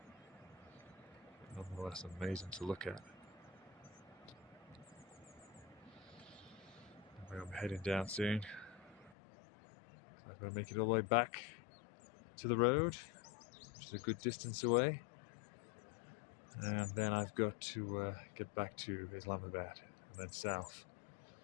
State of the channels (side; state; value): right; drops out; at 9.2 s